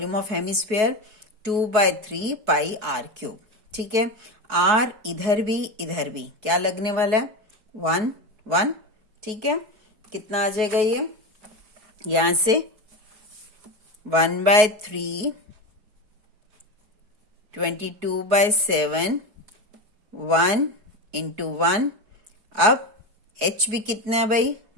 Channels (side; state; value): left; late; 4.7 ms